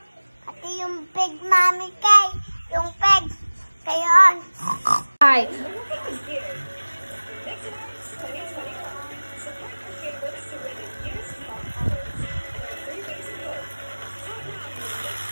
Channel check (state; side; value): inverted; both; correlation -1.00